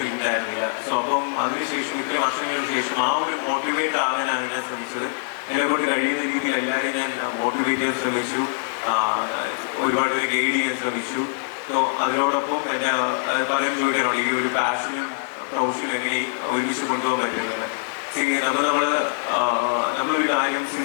ഉണ്ടായിരുന്നില്ല. സോ അപ്പം അതിനുശേഷം ഇത്രയും വർഷങ്ങൾക്ക് ശേഷം ആ ഒരു മോട്ടിവേറ്റ് ആകാനാണ് ഞാൻ ശ്രമിച്ചത്. എന്നെ കൊണ്ട് കഴിയുന്ന രീതിയിൽ എല്ലാവരെയും ഞാൻ മോട്ടിവേറ്റ് ചെയ്യാൻ ശ്രമിച്ചു, ഒരുപാട് പേരെ ഗൈഡ് ചെയ്യാൻ ശ്രമിച്ചു. സോ അതിനോടൊപ്പം എൻ്റെ പലരും ചോദിക്കാറുണ്ട് ഈ ഒരു പാഷനും പ്രൊഫഷനും എങ്ങനെ ഒരുമിച്ച് കൊണ്ടുപോകാൻ പറ്റുന്നത്. നമ്മളൊരു കാര്യം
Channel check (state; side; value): silent; right; digital silence